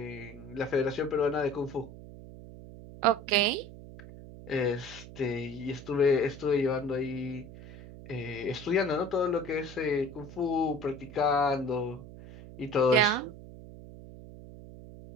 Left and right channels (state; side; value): noise; right; hum, 15 dB below the sound